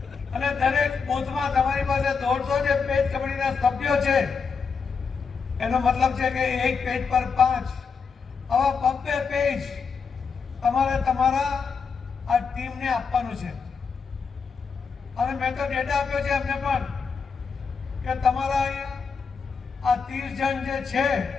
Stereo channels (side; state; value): right; quieter; 5.5 dB